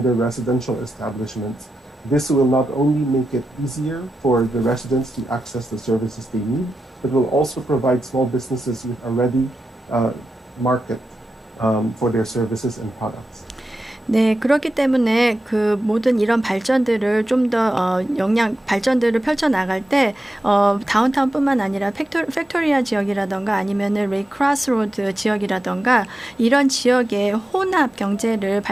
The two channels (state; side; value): normal; both; correlation 0.90